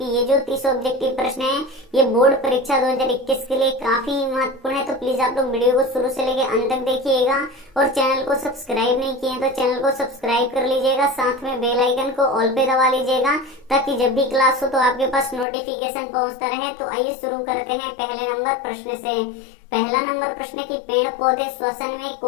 ये जो 30 ऑब्जेक्टिव प्रश्न है ये बोर्ड परीक्षा 2021 के लिए काफी महत्वपूर्ण है। तो प्लीज आप लोग वीडियो को शुरू से लेकर अंत तक देखिएगा और चैनल को सब्सक्राइब नहीं किए तो चैनल को सब्सक्राइब कर लीजिएगा, साथ में बेल आइकन को ऑल पे दबा लीजिएगा ताकि जब भी क्लास हो तो आपके पास नोटिफिकेशन पहुंचता रहे। तो आइए शुरू करते हैं पहले नंबर प्रश्न से। पहला नंबर प्रश्न की पेड़ पौधे श्वसन में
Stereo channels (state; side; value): drops out; right; at 15.5 s